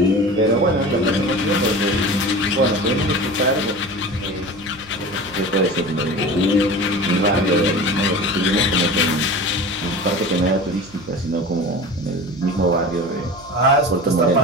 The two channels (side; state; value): right; noise; hum, 23 dB below the sound